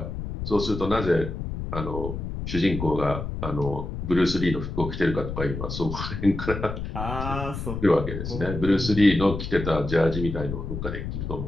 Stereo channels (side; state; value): left; noise; rumble, 6 dB below the sound